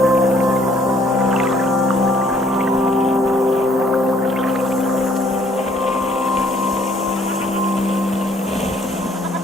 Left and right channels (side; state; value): both; normal; correlation 0.62